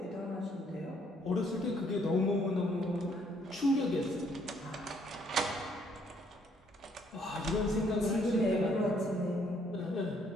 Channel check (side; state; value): both; normal; correlation 0.67